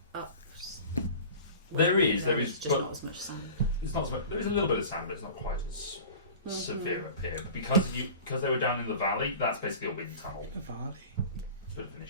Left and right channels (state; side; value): inverted; both; correlation -0.40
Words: up? There is just but not as much sun. it's not. So much, there is a little bit of sand, but it's not quite as severe up here. But because they were down in the valley, that's basically a wind tunnel. The valley. It's a bit of an